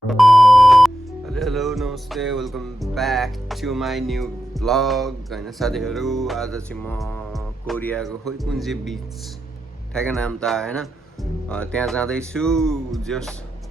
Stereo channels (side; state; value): both; normal; correlation 0.87